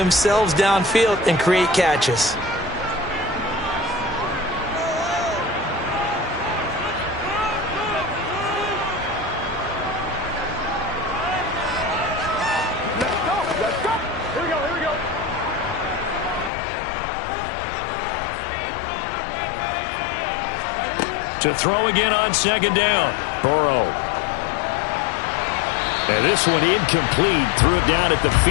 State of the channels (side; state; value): right; drops out; at 16.5 s